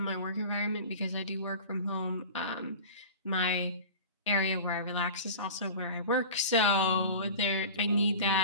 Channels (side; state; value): both; inverted; correlation -0.35